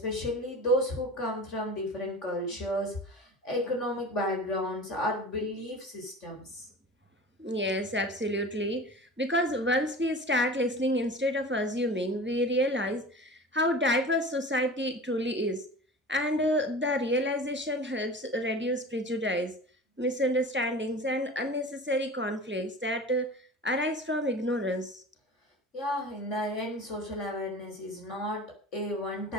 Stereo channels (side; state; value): both; normal; correlation 0.36